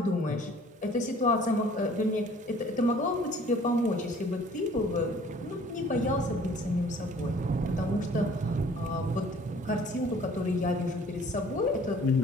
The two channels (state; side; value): normal; both; correlation 0.53